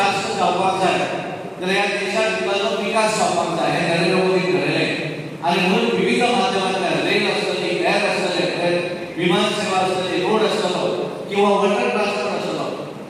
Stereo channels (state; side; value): identical; both; correlation 1.00